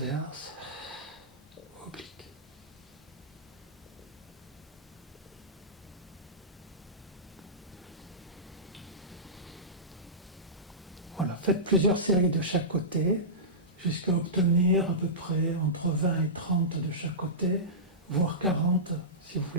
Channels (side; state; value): both; normal; correlation -0.17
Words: oblique. Voilà, faites plusieurs séries de chaque côté, jusqu'à obtenir à peu près entre 20 et 30 de chaque côté, voire 40 si vous